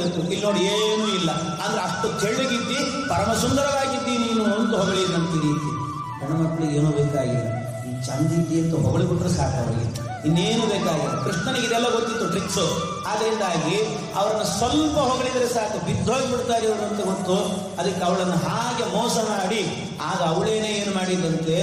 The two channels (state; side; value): identical; both; correlation 1.00